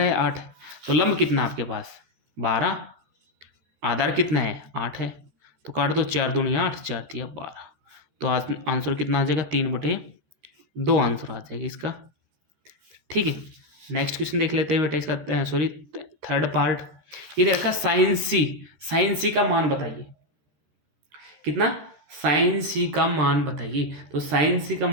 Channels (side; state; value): left; late; 13 ms